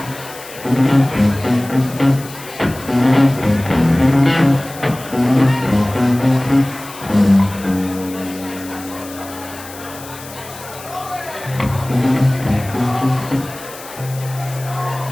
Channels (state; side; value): noise; left; hiss, 16 dB below the sound